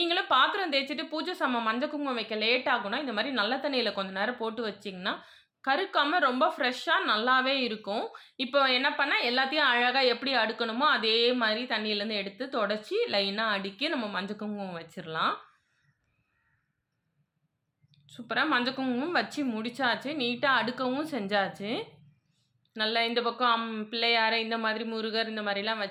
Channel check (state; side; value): identical; both; correlation 1.00